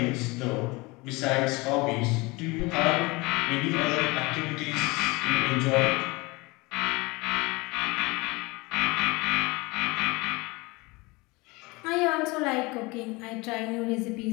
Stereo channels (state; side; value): quieter; right; 24.3 dB